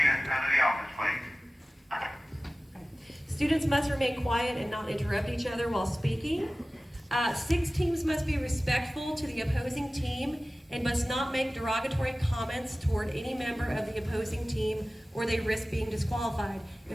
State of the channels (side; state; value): both; normal; correlation 0.97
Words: come to the office, please. students must remain quiet and not interrupt each other while speaking. 6, teams must be respectful to the opposing team and must not make derogatory comments toward any member of the opposing team, or they risk being disqualified.